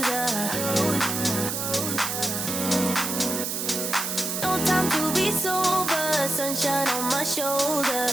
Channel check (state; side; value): noise; right; hiss, 2 dB below the sound